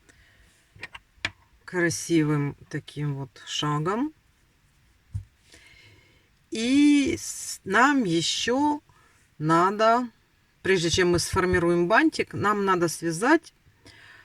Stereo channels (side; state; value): both; identical; correlation 1.00